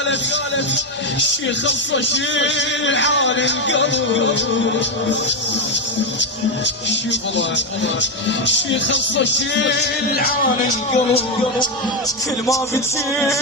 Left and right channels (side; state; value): both; normal; correlation 0.09